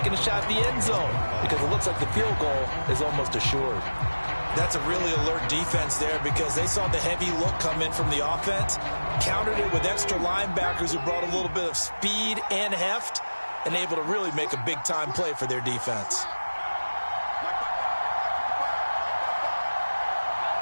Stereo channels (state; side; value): inverted; both; correlation -1.00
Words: a shot at the end zone because it looks like the field goal is almost assured. That's a really alert defense there because they saw the heavy look come in from the offense, countered it with extra linebackers who brought a little bit of speed and heft, and able to really make a big-time play for their defense.